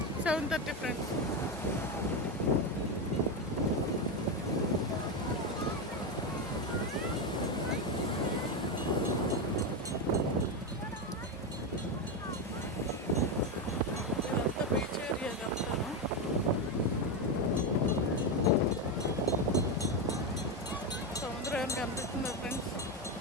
7:30 ఫ్రెండ్స్. ఇదంతా బీచ్ ఏరియా ఇదంతాను. సముద్రం ఏం కనిపిస్తుందా ఫ్రెండ్స్?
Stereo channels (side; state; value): both; normal; correlation 0.11